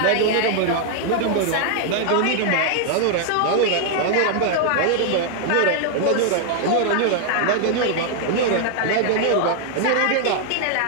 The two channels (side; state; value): both; different; correlation 0.00